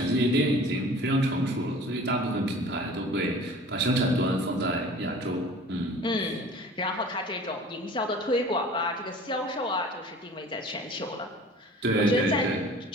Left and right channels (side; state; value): both; normal; correlation 0.44